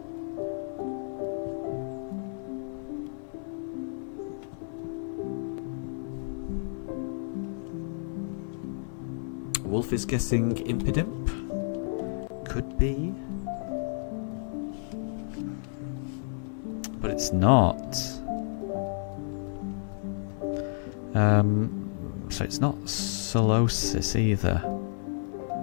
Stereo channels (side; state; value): right; silent; 57 dB below the other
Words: Wolf is guessing Impidimp. Could be. But it's not. So it's not Solosis either.